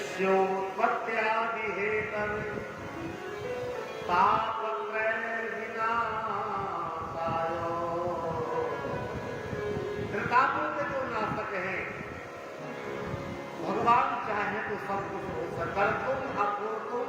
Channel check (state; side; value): identical; both; correlation 1.00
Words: हेतु तापत्रय विनाशाय, त्रितापों के जो नाशक हैं, भगवान चाहे तो सब कुछ हो सकता, तुम अपूर्तुम